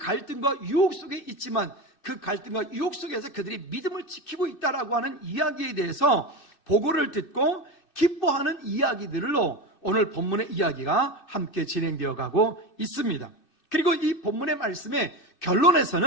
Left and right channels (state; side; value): late; right; 2.6 ms